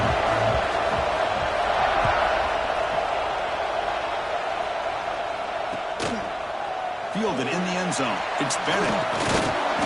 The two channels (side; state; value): both; identical; correlation 1.00